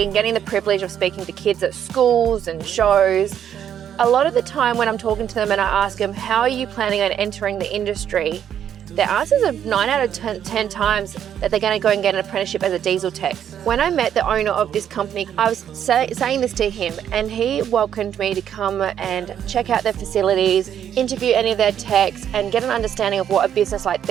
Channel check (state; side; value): quieter; left; 9.5 dB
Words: and getting the privilege of speaking to kids at schools and shows, a lot of the time when I'm talking to them and I ask them, how are you planning on entering the industry? Their answers are 9 out of 10 times that they're going to go and get an apprenticeship as a diesel tech. When I met the owner of this company, I was saying this to him and he welcomed me to come and check out their facilities, interview any of their techs and get an understanding of what a business like